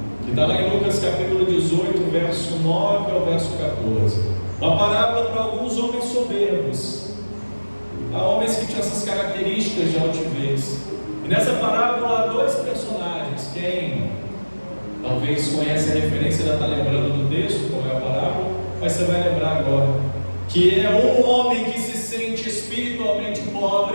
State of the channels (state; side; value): inverted; both; correlation -1.00